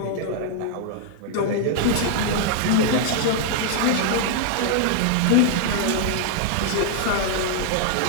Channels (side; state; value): both; different; correlation 0.00